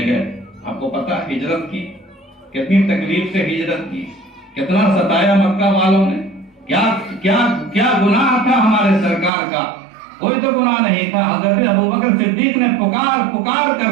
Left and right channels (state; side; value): drops out; left; at 9.3 s